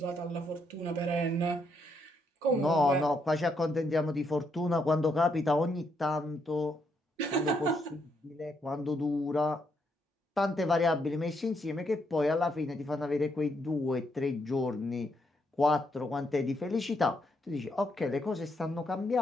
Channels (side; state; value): both; normal; correlation 0.76